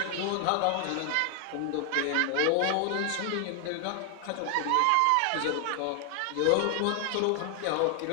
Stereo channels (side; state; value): both; different; correlation 0.00